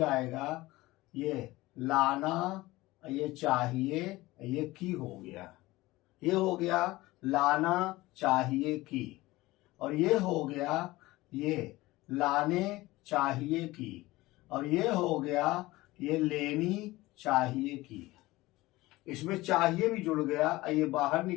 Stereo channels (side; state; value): right; quieter; 19.2 dB